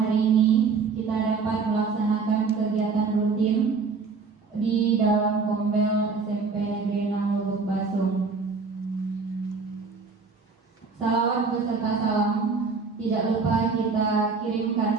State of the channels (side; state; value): left; quieter; 4.7 dB